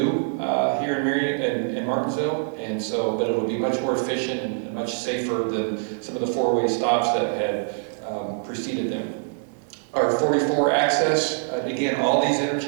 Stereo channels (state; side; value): silent; left; digital silence